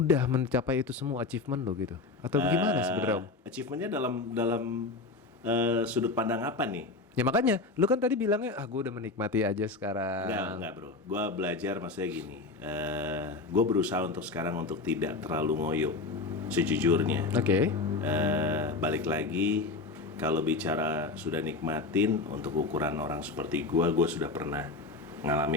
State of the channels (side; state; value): right; quieter; 3.7 dB